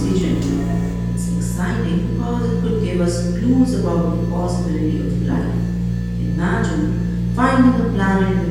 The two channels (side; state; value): both; identical; correlation 1.00